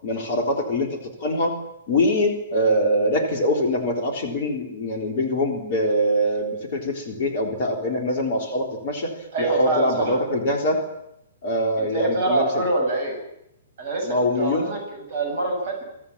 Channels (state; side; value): inverted; both; correlation -0.45